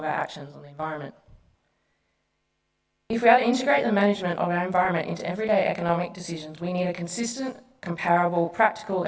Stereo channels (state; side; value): identical; both; correlation 1.00